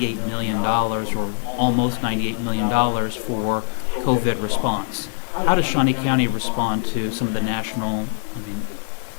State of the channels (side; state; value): right; silent; 64 dB below the other